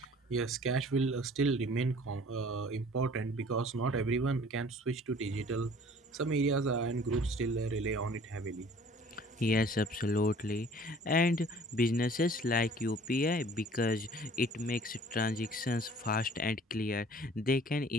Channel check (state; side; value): normal; both; correlation 0.51